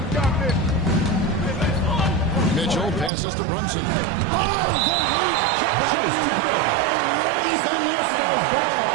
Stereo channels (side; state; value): left; drops out; at 3.1 s